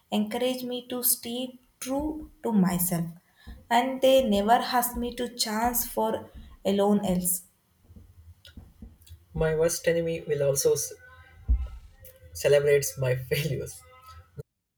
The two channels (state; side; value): identical; both; correlation 1.00